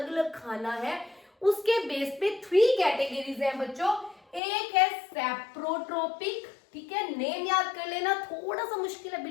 अलग खाना है। उसके बेस पे 3 कैटेगरीज है बच्चों। एक है सैप्रोट्रोपिक, ठीक है, नेम याद कर लेना, थोड़ा सा मुश्किल है,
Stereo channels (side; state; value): right; drops out; at 4.4 s